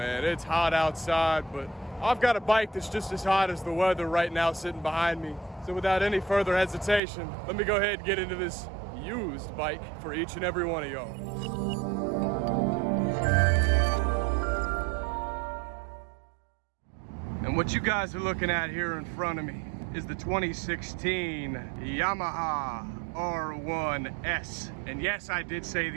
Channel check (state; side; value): drops out; left; at 7.0 s